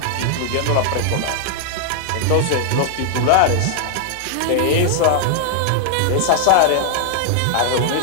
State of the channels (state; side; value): different; both; correlation 0.00